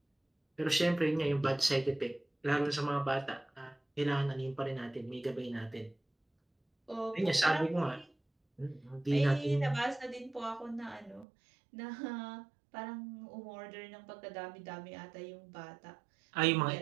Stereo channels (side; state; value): left; drops out; at 11.2 s